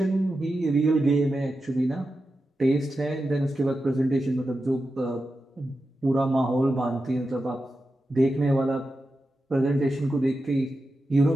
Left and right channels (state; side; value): normal; both; correlation 0.90